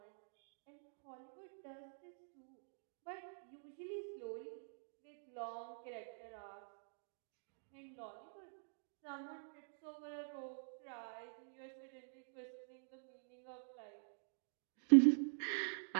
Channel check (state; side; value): silent; left; digital silence